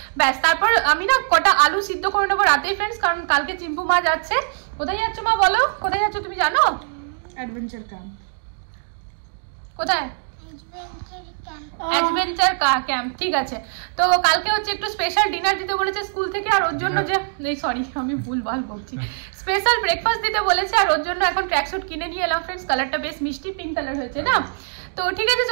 ব্যাস, তারপর আমি না কটা আলু সিদ্ধ করে নেবো রাতেই ফ্রেন্ডস, কারণ কালকে চিম্পু মা যাচ্ছে। কোথায় যাচ্ছ মা বলো, কোথায় যাচ্ছ তুমি জানো? Adventure camp. কোথায়? অ্যাডভেঞ্চার ক্যাম্প, ঠিক আছে। তো কালকে হচ্ছে একটু স্পেশাল ডিনার দিতে বলেছে স্কুল থেকে, আর ওর জন্য যে সরি আমি ভুলভাল বলছি, স্পেশাল ব্রেকফাস্ট দিতে বলেছে, আর ওর জন্য এখন ট্র্যাকস্যুট কিনে নিয়ে এলাম ফ্রেন্ডস, কালারটা বেশ মিষ্টি পিঙ্ক কালার হয়েছে না। তো ঠিক আছে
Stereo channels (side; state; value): left; silent; digital silence